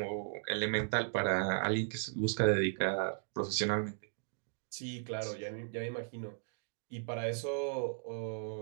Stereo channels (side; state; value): left; silent; digital silence